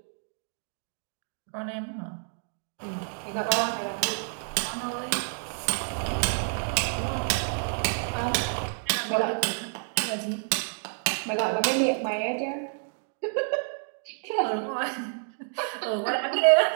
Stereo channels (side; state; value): left; silent; 59 dB below the other